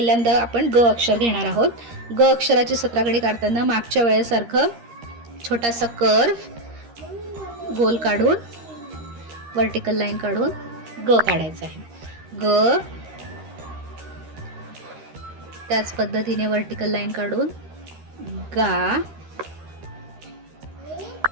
आपण ग अक्षर घेणार आहोत. ग अक्षराची 17 खडी काढताना मागच्या वेळेसारखं छोटासा कर्व गोल काढून व्हर्टिकल लाईन काढून ग काढायचा आहे. ग, त्याच पद्धतीने व्हर्टिकल लाईन काढून गा,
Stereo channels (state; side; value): late; left; 13 ms